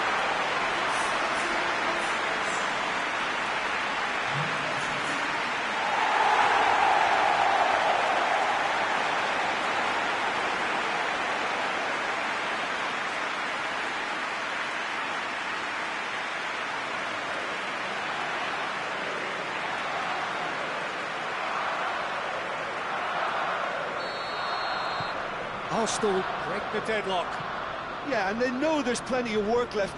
Arsenal break the deadlock. Yeah, and they know there's plenty of work left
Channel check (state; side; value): identical; both; correlation 1.00